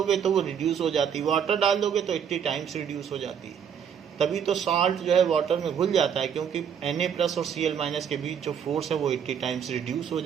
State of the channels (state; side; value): quieter; left; 7.9 dB